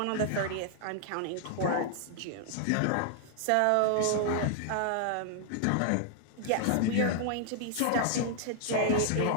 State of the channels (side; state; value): both; different; correlation 0.00